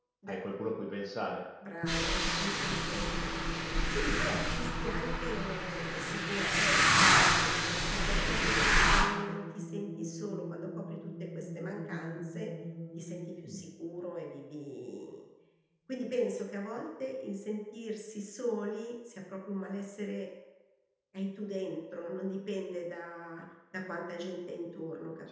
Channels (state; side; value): identical; both; correlation 1.00